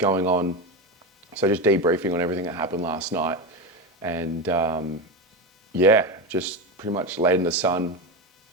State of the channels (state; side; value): normal; both; correlation 0.17